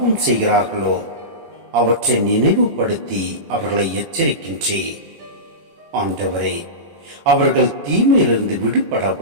செய்கிறார்களோ அவற்றை நினைவுபடுத்தி அவர்களை எச்சரிக்கின்றேன். ஆண்டவரே, அவர்கள் தீமையிலிருந்து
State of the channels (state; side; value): late; left; 21 ms